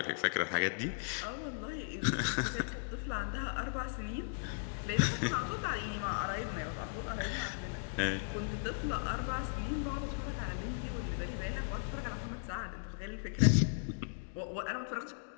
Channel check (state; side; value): silent; right; digital silence